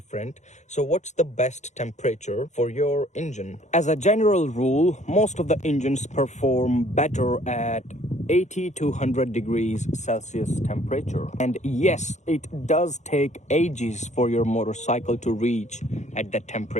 So what's the best temperature for your engine? As a general rule, most of the engines perform better at 80 to 100 degrees Celsius temperature. And yes, it does take ages for your motorcycle to reach at that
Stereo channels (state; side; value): late; right; 0.34 ms